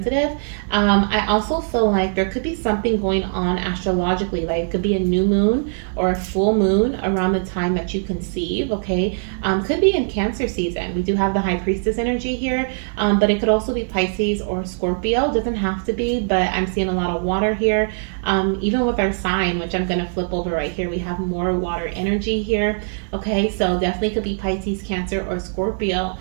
I also feel like there could be something going on astrologically, like it could be a new moon or a full moon around the time that you conceive, okay? Could be in Cancer season. We do have the High Priestess energy here, but it could also be Pisces or Scorpio. Doesn't have to be, but I'm seeing a lot of water here. Even with our sign, which I'm going to flip over right here, we have more water energy here. Okay, so definitely could be Pisces, Cancer, or Scorpio.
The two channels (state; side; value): silent; left; 65 dB below the other